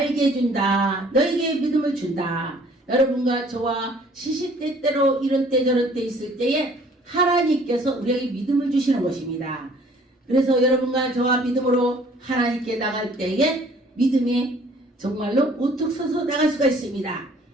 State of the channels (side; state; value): both; normal; correlation 0.56